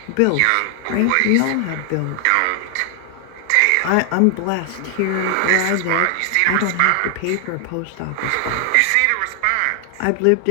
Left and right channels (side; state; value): both; different; correlation 0.00